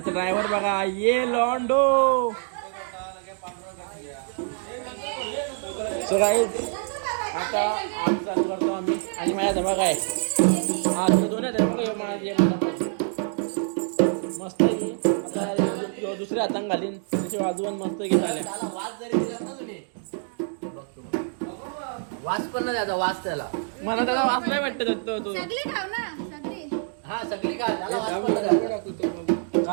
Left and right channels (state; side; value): silent; left; 61 dB below the other